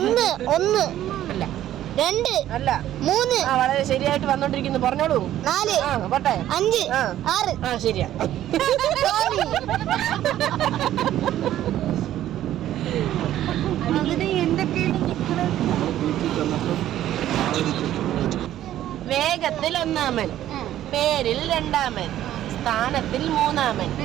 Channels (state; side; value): quieter; left; 12.6 dB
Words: അല്ല, 2 അല്ല, 3. വളരെ ശരിയായിട്ട് വന്നോണ്ടിരിക്കുന്നു. പറഞ്ഞോളൂ. 4 പോട്ടെ. 5 6. ശരിയാ. വേഗത്തിൽ 1-മൻ, പേരിൽ 2-മൻ, സ്ഥാനത്തിൽ 3-മൻ.